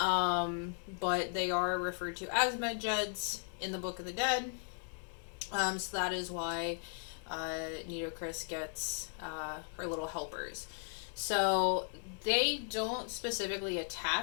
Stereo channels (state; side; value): silent; right; 53 dB below the other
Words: they are referred to as medjeds in the Book of the Dead. So that is why Nidochris gets her little helpers. So they don't specifically